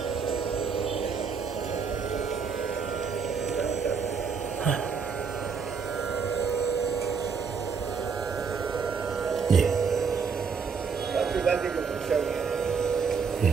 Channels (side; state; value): left; quieter; 5.9 dB